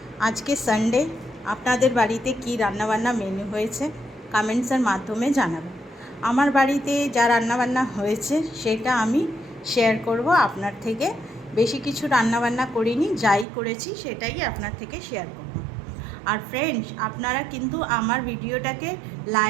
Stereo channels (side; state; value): left; drops out; at 13.5 s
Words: আজকে সানডে, আপনাদের বাড়িতে কি রান্নাবান্না মেনু হয়েছে কমেন্টসের মাধ্যমে জানাবেন। আমার বাড়িতে যা রান্নাবান্না হয়েছে সেটা আমি শেয়ার করব আপনার থেকে। বেশি কিছু রান্নাবান্না করিনি, যাই করেছি সেটাই আপনার থেকে শেয়ার করব। আর ফ্রেন্ডস, আপনারা কিন্তু আমার ভিডিওটাকে